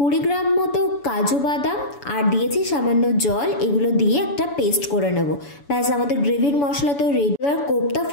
গ্রাম মতো কাজু বাদাম, আর দিয়েছি সামান্য জল। এগুলো দিয়ে একটা পেস্ট করে নেব। ব্যাস আমাদের গ্রেভির মশলা তো রেডি। এবার কোপ্তা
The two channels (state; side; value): late; right; 7.0 ms